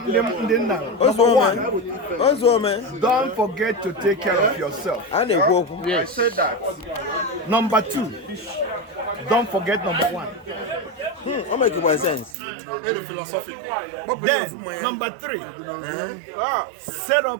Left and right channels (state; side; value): drops out; left; at 12.3 s